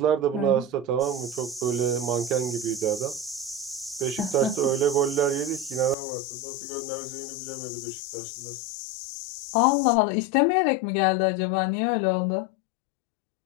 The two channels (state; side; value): drops out; right; at 6.0 s